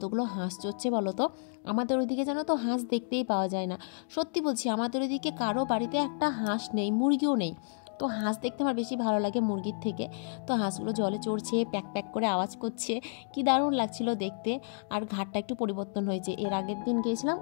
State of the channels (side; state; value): right; silent; digital silence